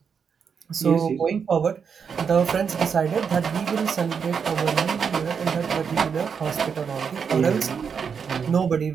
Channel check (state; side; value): quieter; left; 6.5 dB